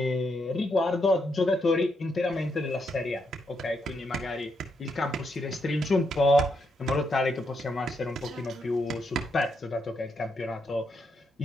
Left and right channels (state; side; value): normal; both; correlation 0.79